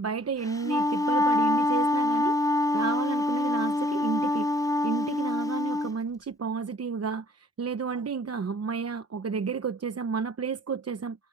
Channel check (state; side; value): normal; both; correlation 0.57